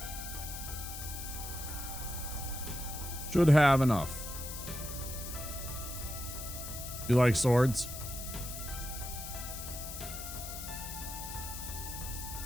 Should have enough. You like swords?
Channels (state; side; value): noise; left; hiss, 8 dB below the sound